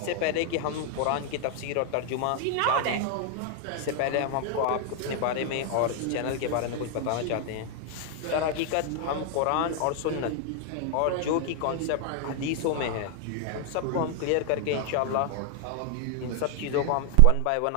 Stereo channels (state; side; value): different; both; correlation 0.00